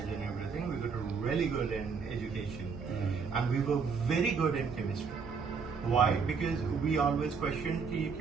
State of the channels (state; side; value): quieter; left; 5.6 dB